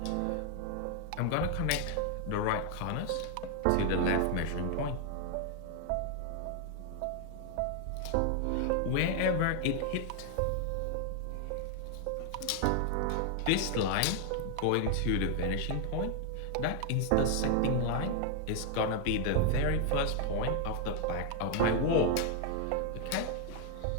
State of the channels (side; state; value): both; different; correlation 0.00